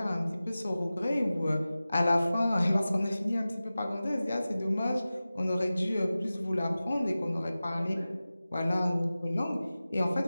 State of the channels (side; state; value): both; inverted; correlation -0.96